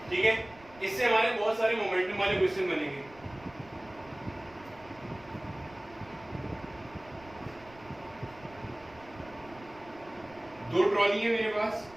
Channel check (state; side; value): noise; right; rumble, 23 dB below the sound